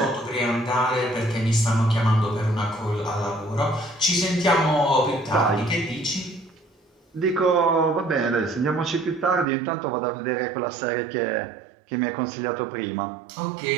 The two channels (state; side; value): drops out; left; at 9.5 s